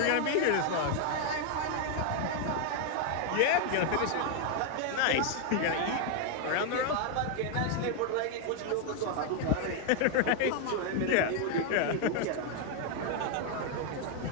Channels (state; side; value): different; both; correlation 0.00